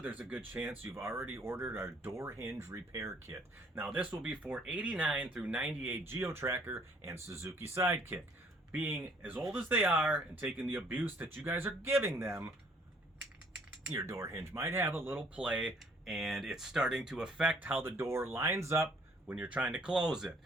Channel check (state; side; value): normal; both; correlation 0.61